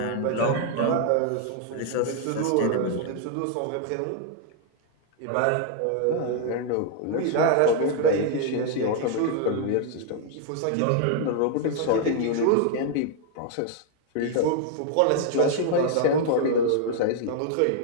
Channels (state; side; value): different; both; correlation 0.00